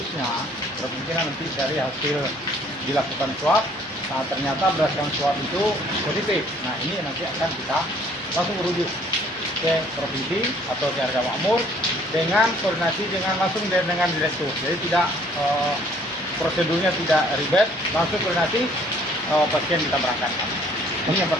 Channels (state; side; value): normal; both; correlation 0.59